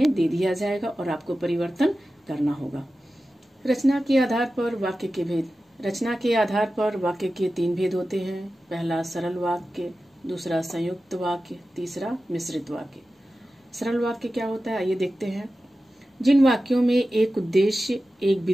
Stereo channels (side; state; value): both; normal; correlation 0.94